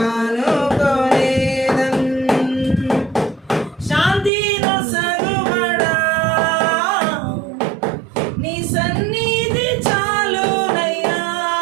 శాంతి నొసగుబడా నీ సన్నిధి చాలునయ్యా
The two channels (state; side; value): drops out; left; at 4.3 s